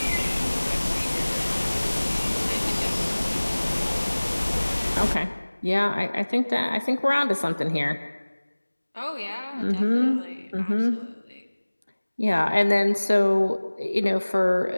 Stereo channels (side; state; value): both; inverted; correlation -1.00